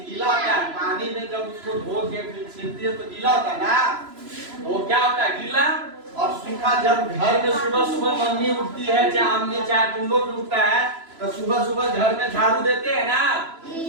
गीला होता है? पानी में जब उसको धो के फिर छिलती है तो गीला होता है ना, तो वो क्या होता है? गीला और सूखा। जब घर में सुबह सुबह मम्मी उठती है, चाहे अम्मी चाहे तुम लोग उठता है, तो सुबह सुबह घर में झाड़ू देते हैं ना,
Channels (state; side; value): late; left; 3.0 ms